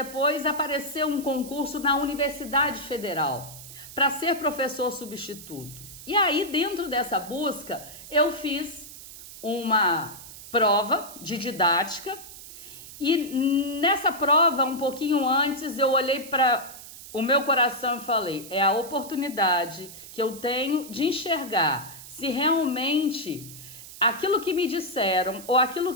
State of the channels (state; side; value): noise; right; hiss, 15 dB below the sound